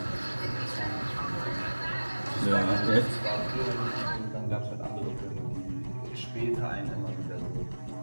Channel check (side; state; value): both; inverted; correlation -1.00